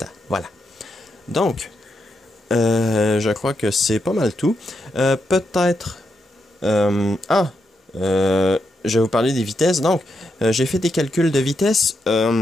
Voilà. Donc, je crois que c'est pas mal tout. Peut-être... je vais vous parler des vitesses. Donc, j'ai fait des calculs de vitesse...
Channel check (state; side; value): normal; both; correlation 0.83